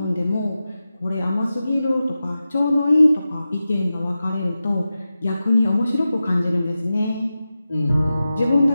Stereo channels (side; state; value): both; inverted; correlation -0.93